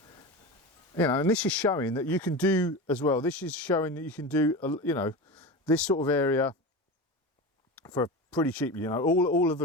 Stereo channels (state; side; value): normal; both; correlation 0.26